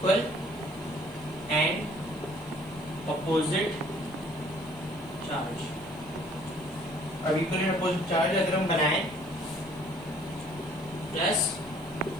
and opposite charge. अब इक्वल एंड अपोजिट चार्ज अगर हम बनाएं, प्लस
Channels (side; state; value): left; noise; hiss, 26 dB below the sound